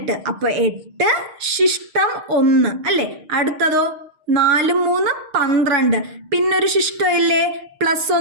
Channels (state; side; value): late; left; 6.6 ms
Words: അപ്പൊ 8 ശിഷ്ടം 1 അല്ലേ? അടുത്തതോ 4 3 12. പിന്നൊരു ശിഷ്ടം ഇല്ലേ?